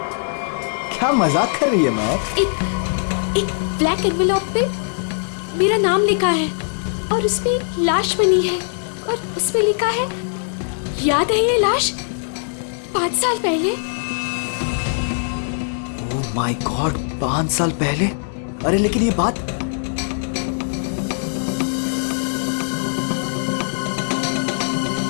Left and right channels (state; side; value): silent; right; digital silence